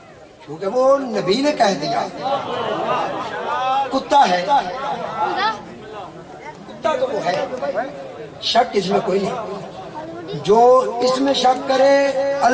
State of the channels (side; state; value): both; identical; correlation 1.00